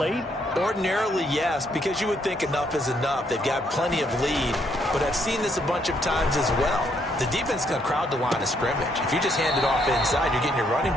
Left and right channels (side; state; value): both; normal; correlation 0.72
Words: Ordinarily, yes, because you would think enough is enough. They've got plenty of lead, but I've seen this a bunch of times as well. The defense is going to crowd the line of scrimmage. If you just hand it off inside, you're getting your running